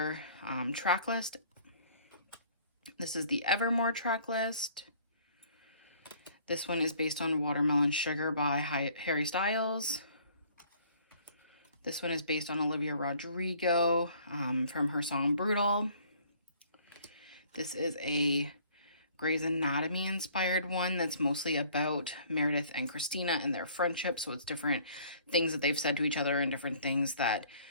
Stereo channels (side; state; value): both; inverted; correlation -0.57